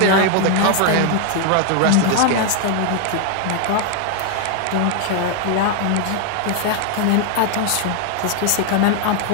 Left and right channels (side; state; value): both; different; correlation 0.00